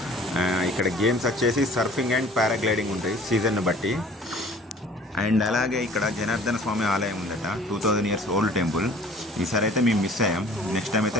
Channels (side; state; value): both; normal; correlation 0.49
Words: ఇక్కడ గేమ్స్ వచ్చేసి సర్ఫింగ్ అండ్ పారాగ్లైడింగ్ ఉంటాయి సీజన్ను బట్టి. అండ్ అలాగే ఇక్కడ జనార్దన స్వామి ఆలయం ఉందట, 2000 years ఓల్డ్ టెంపుల్. ఈసారి అయితే మేము మిస్ అయ్యాం. నెక్స్ట్ టైం